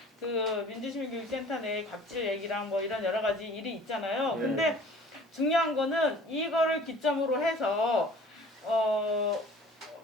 그 민주시민교육센터 내 갑질 얘기랑 뭐 이런 여러 가지 일이 있잖아요. 근데 중요한 거는 이거를 기점으로 해서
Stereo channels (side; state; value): both; normal; correlation 0.48